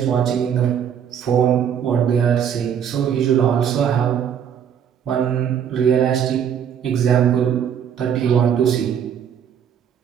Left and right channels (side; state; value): left; quieter; 8.5 dB